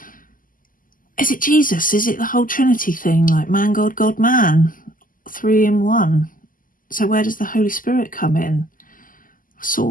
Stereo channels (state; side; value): late; right; 0.40 ms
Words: Is it Jesus? Is it the whole Trinity thing, like man, God, God, man, 3 in 1? So where does the Holy Spirit come in?